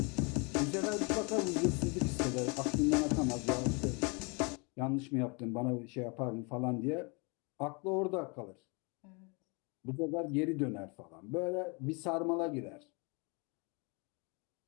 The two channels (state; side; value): quieter; right; 31.7 dB